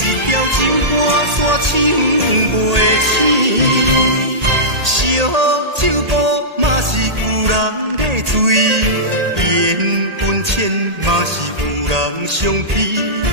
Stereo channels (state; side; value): late; left; 1.8 ms